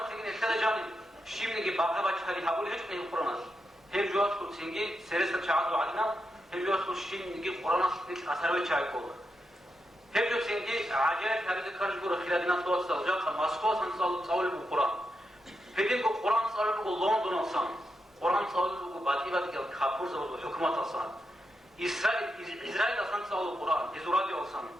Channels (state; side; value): normal; both; correlation 0.86